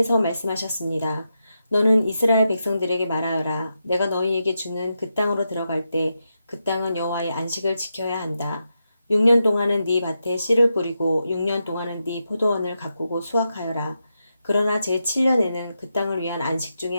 말씀하셨습니다. 너는 이스라엘 백성들에게 말하여라. 내가 너희에게 주는 그 땅으로 들어갈 때 그 땅은 여호와의 안식을 지켜야 한다. 6년 동안은 네 밭에 씨를 뿌리고 6년 동안은 네 포도원을 가꾸고 수확하여라. 그러나 제7년에는 그 땅을 위한 안식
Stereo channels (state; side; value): inverted; both; correlation -0.86